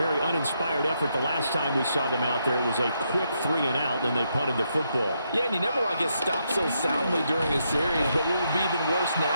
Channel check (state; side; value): inverted; both; correlation -0.79